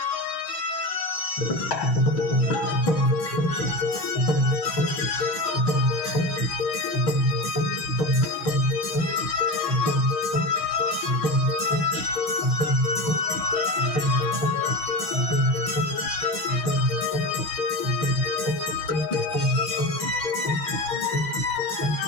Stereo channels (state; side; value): late; right; 6.4 ms